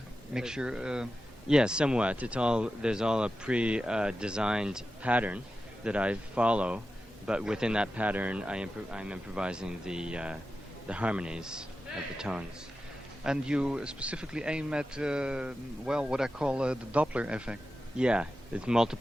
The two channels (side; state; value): both; normal; correlation 0.92